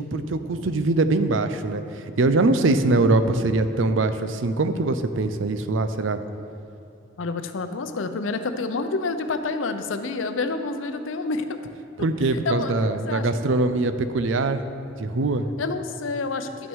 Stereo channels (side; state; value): both; normal; correlation 0.31